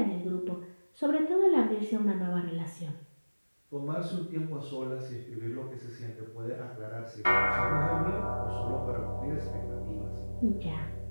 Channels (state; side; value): inverted; both; correlation -1.00